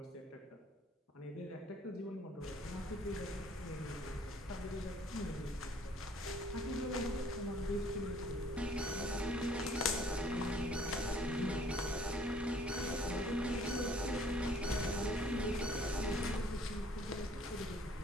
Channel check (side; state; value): both; normal; correlation 0.57